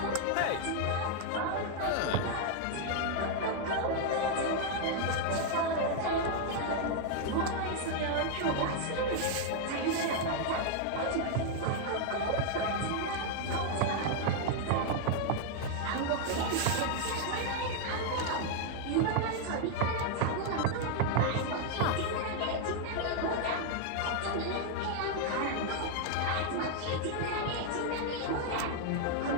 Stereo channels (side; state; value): both; different; correlation 0.00